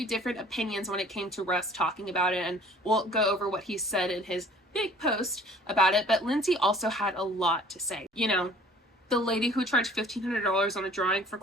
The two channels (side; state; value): both; normal; correlation 0.51